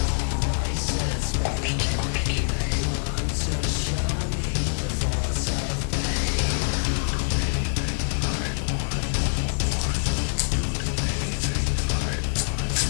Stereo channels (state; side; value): silent; right; digital silence